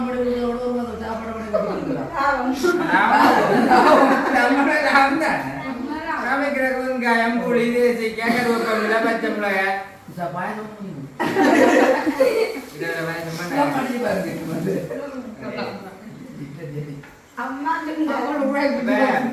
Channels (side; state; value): both; identical; correlation 1.00